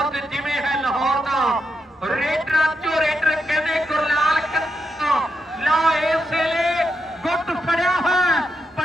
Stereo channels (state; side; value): normal; both; correlation 0.83